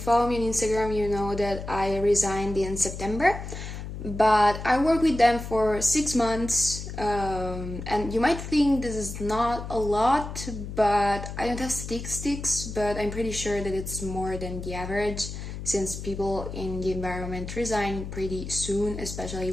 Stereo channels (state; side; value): noise; left; hum, 8 dB below the sound